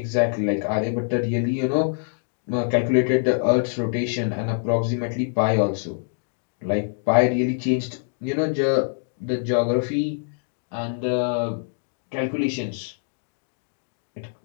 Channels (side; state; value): right; silent; digital silence